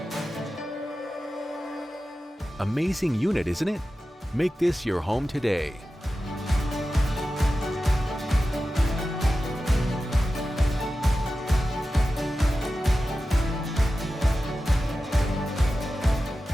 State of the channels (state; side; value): normal; both; correlation 0.93